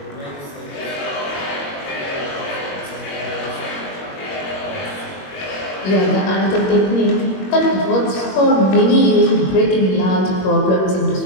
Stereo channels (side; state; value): right; late; 21 ms